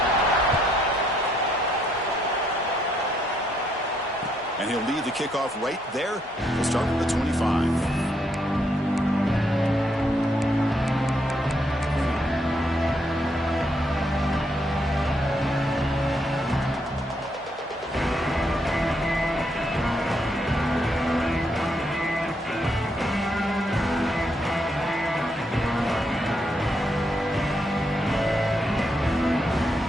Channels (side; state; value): both; normal; correlation 0.75